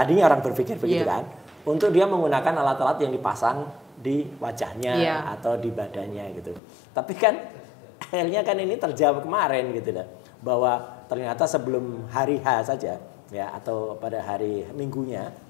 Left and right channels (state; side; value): drops out; right; at 6.6 s